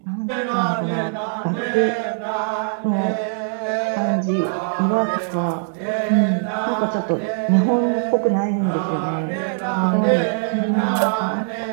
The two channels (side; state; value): left; silent; digital silence